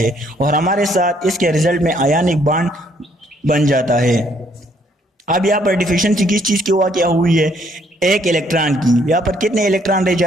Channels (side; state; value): both; normal; correlation 0.67